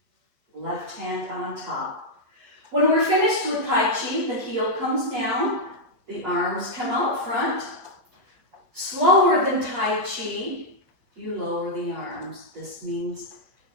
left hand on top. When we're finished with Tai Chi, the heel comes down, the arms come out front. Slower than Tai Chi, you lower the arms. This means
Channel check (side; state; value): left; late; 8.4 ms